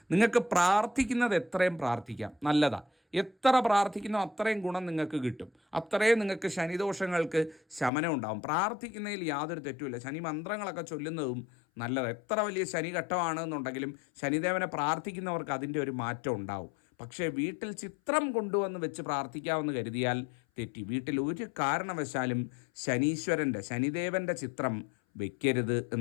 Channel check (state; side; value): drops out; right; at 7.9 s